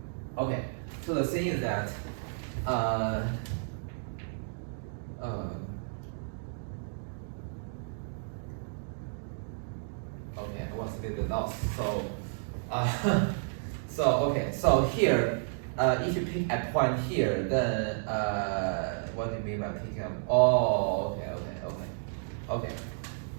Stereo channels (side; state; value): left; silent; digital silence